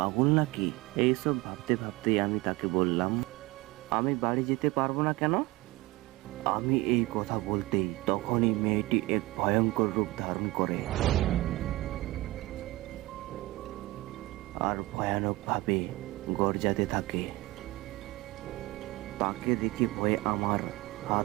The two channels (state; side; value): quieter; left; 20.6 dB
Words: নাকি? এইসব ভাবতে ভাবতেই আমি তাকে বললাম, আমি বাড়ি যেতে পারবো না কেন? আমি এই কথা বলতেই তখনই মেয়েটি এক ভয়ঙ্কর রূপ ধারণ করে আর ভয়ানকভাবে গর্জাতে থাকে। তাকে দেখে ভয়ে আমার